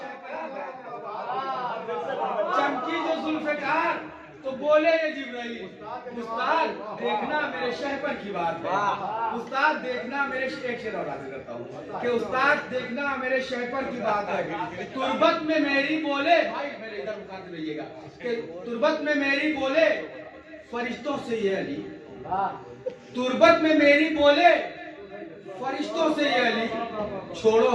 चमकी जो जुल्फ़िकार तो बोले ये जिब्राइल, उस्ताद देखना मेरे शहपर की बात है। उस्ताद देखना मेरे, एक शेर और हाजिर करता हूँ कि उस्ताद देखना मेरे शहपर की बात है। तुर्बत में मेरी बोले, भाई मेरे इधर मुखातिब रहिएगा, कि तुर्बत में मेरी बोले फरिश्तों से ये अली, तुर्बत में मेरी बोले फरिश्तों से ये अली, छोड़ो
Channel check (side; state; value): both; identical; correlation 1.00